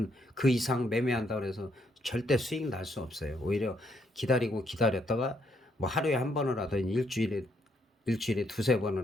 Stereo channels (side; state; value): both; normal; correlation 0.73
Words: 그 이상 매매한다 그래서 절대 수익 날 수 없어요. 오히려 기다렸다가 뭐 하루에 한 번을 하든 일주일에 두세